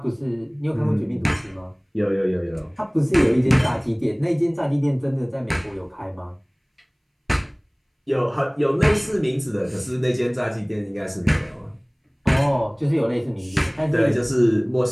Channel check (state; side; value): identical; both; correlation 1.00